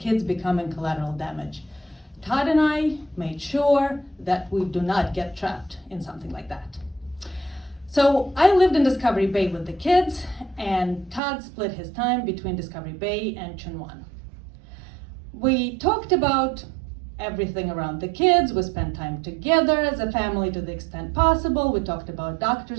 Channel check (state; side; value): drops out; left; at 11.2 s